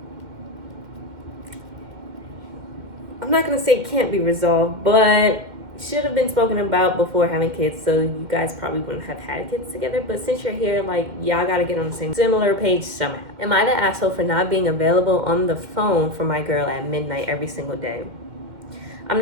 I'm not going to say can't be resolved, but should have been spoken about before having kids, so you guys probably wouldn't have had kids together. But since you're here, like, y'all gotta get on the same similar page somehow. Am I the asshole for not being available on the phone for my girl at midnight every single day? I'm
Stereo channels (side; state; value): left; late; 2.1 ms